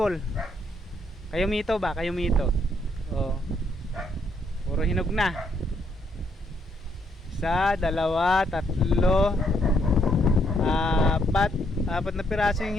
Kayo mito ba? Kayo mito. Oh. Puro hinog na. Isa, dalawa, tatlo, apat na piraso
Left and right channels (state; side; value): normal; both; correlation 0.73